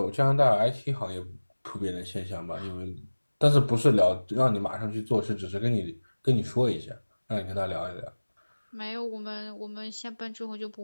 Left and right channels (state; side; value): inverted; both; correlation -1.00